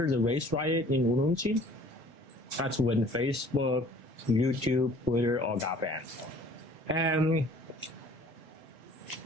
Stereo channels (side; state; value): both; normal; correlation 0.52